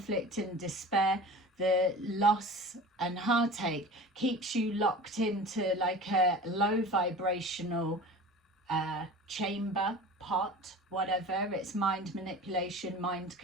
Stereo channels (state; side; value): normal; both; correlation 0.37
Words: and despair, the loss and heartache, keeps you locked into like a low vibrational chamber, pot, whatever. It's mind manipulation, mind